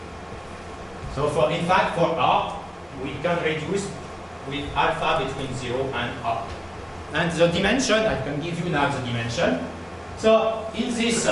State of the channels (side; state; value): both; identical; correlation 1.00